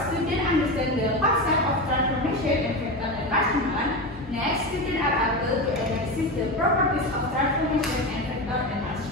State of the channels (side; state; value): both; normal; correlation 0.20